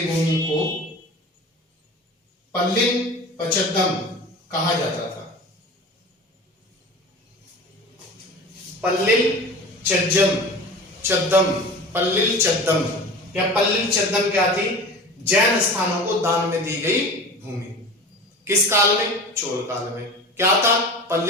भूमि को पल्लिन पचद्दम कहा जाता था। पल्लिल चद्दम, पल्लिल चद्दम या पल्लिल चद्दम क्या थी? जैन स्थानों को दान में दी गई भूमि। किस काल में? चोल काल में। क्या था?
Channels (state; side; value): normal; both; correlation 0.36